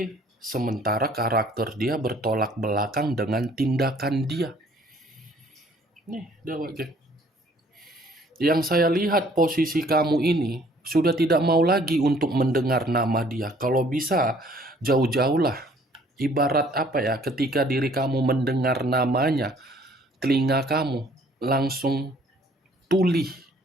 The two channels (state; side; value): normal; both; correlation 0.59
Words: sementara karakter dia bertolak belakang dengan tindakan dia. Nih, dia, Wak Geng. Yang saya lihat posisi kamu ini sudah tidak mau lagi untuk mendengar nama dia. Kalau bisa jauh-jauhlah. Ibarat apa ya, ketika diri kamu mendengar namanya, telinga kamu langsung tuli,